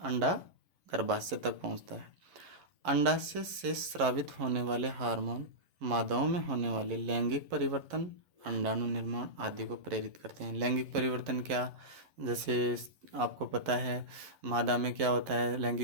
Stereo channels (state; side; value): late; left; 11 ms